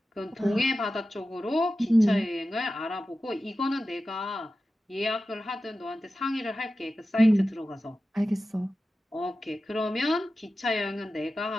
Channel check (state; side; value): normal; both; correlation 0.93